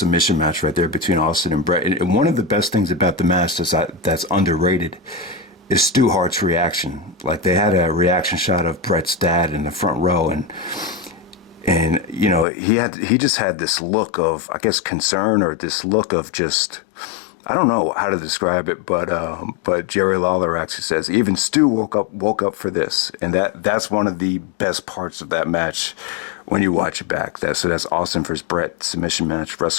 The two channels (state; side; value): drops out; right; at 12.5 s